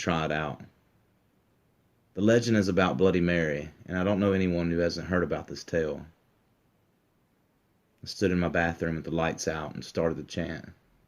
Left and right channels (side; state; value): both; identical; correlation 1.00